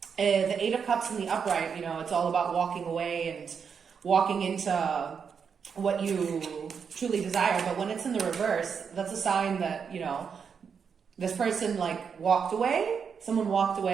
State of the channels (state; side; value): quieter; left; 6.5 dB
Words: The Eight of Cups in the upright, you know, it's all about walking away and walking into what you truly desire. But when it's in the reverse, that's a sign that, you know, this person like walked away, someone walked